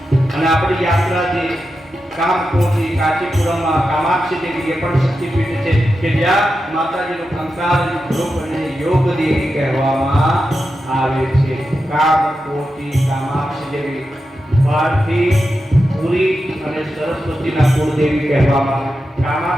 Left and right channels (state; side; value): normal; both; correlation 0.89